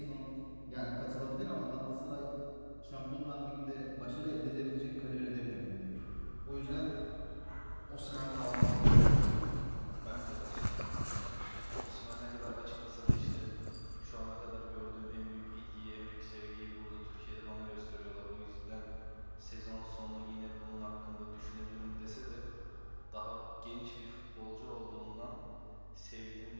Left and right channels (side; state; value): both; inverted; correlation -1.00